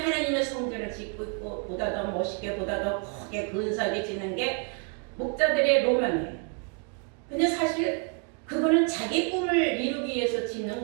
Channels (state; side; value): quieter; left; 37.6 dB